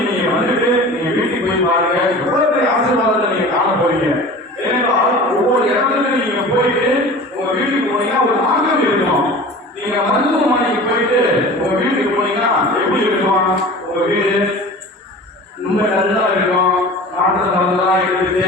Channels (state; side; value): normal; both; correlation 0.38